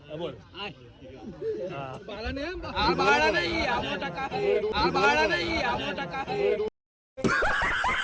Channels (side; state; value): both; identical; correlation 1.00